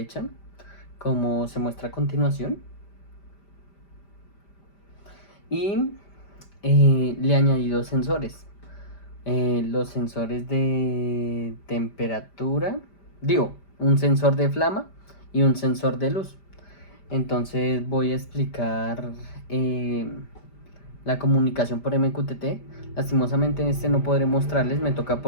como se muestra a continuación. Y le añadí dos sensores. Los sensores de temperatura, un sensor de flama y un sensor de luz. Entonces voy a explicar eh, la comunicación por MQTT. Lastimosamente en este no podré mostrarles, me toca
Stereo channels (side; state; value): right; late; 5.1 ms